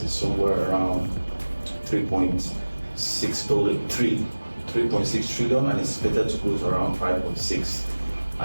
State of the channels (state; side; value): inverted; both; correlation -1.00